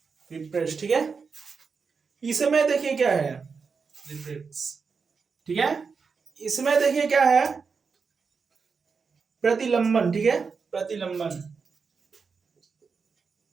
रिप्रेस, ठीक है। इसमें देखिए क्या है, रिप्रेस, ठीक है। इसमें देखिए क्या है, प्रतिलंबन, ठीक है, प्रतिलंबन,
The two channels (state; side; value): quieter; left; 5.3 dB